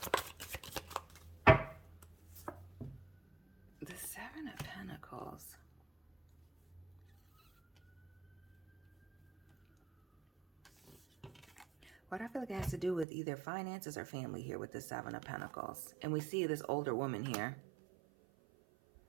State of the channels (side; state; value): left; drops out; at 13.1 s